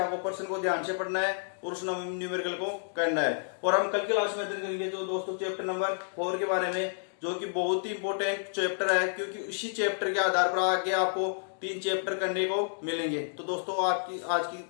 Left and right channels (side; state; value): right; silent; digital silence